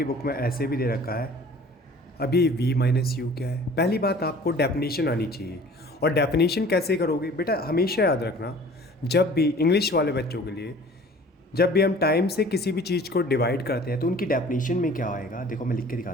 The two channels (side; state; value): both; normal; correlation 0.48